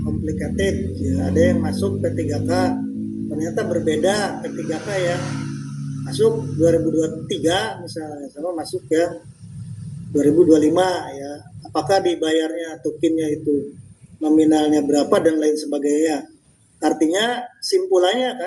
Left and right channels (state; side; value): identical; both; correlation 1.00